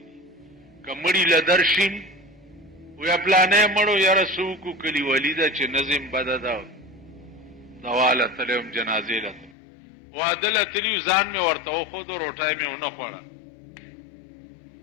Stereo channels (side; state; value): right; drops out; at 9.6 s